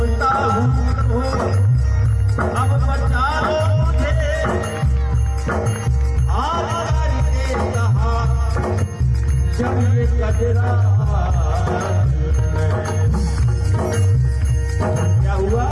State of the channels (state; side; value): identical; both; correlation 1.00